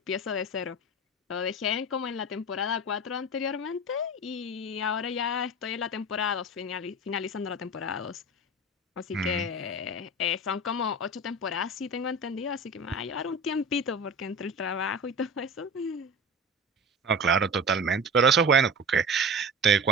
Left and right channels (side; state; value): both; normal; correlation 0.32